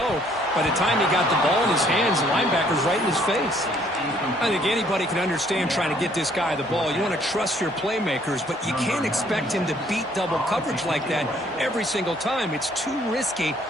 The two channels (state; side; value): normal; both; correlation 0.63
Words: By the time he got the ball in his hands, the linebacker's right in his face. I think anybody can understand trying to get this guy the ball. You want to trust your playmakers, but you can't expect him to beat double coverage like that every single time. It's too risky,